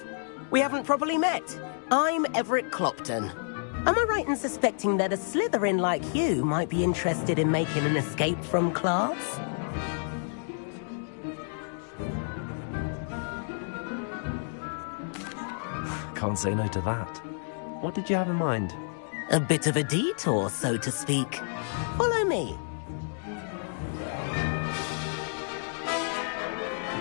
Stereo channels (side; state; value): right; silent; digital silence